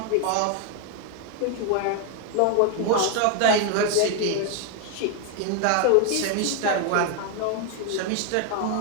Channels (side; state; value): both; different; correlation 0.01